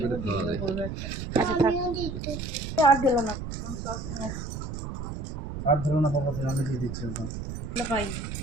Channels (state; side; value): noise; right; rumble, 6 dB below the sound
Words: আচ্ছা থাক। আর ধরো না বাবা, আমি দিয়ে দিচ্ছি।